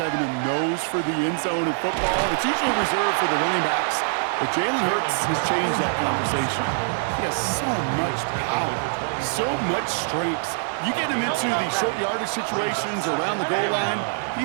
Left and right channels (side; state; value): left; silent; 58 dB below the other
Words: a nose for the end zone in football. It's usually reserved for the running backs. But Jalen Hurts has changed that conversation. He has so much power, so much strength. You get him into these short yardage situations around the goal line, he